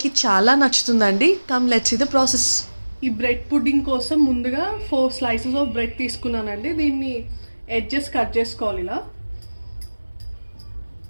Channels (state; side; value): inverted; both; correlation -1.00